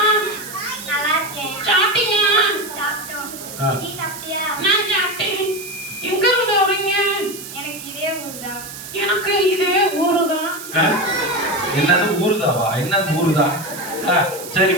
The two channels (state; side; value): noise; right; hiss, 12 dB below the sound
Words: நல்லா இருக்கேன். சாப்பிட்டீங்களா? சாப்பிட்டோம். நீ சாப்பிட்டியா? நான் சாப்பிட்டேன். எங்க இருந்து வரீங்க? எனக்கு இதே ஊர்தான். எனக்கு இதே ஊருதான். என்னது ஊருதாவா? என்னது ஊருதா? சரி